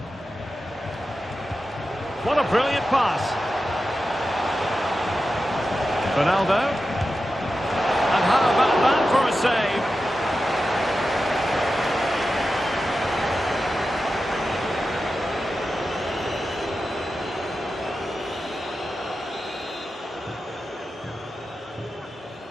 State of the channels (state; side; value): normal; both; correlation 0.92